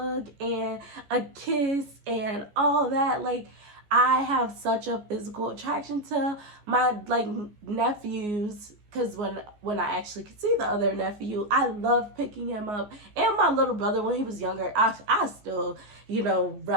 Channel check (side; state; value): left; late; 14 ms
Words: and a kiss and all that. Like, I have such a physical attraction to my like nephews, because when I actually could see the other nephew, I love picking him up. And my little brother, when he was younger, I still,